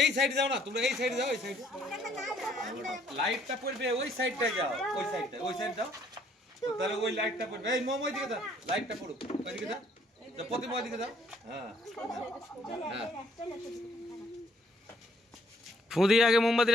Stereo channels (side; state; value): both; normal; correlation 0.65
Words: এই সাইডে যাও না, তোমরা এই সাইডে যাও, এই সাইডে লাইটটা পড়বে, ওই সাইডটা যাও, ওই সাইডটা, ওই সাইড যাও। তাহলে ওই লাইটটা পড়বে, এই মোম ওইদিকে দাও, লাইটটা পড়ুক ওইদিকে দাও, প্রতিমা ওইদিকে দাও। হ্যাঁ হ্যাঁ, ফু দিয়ে আগে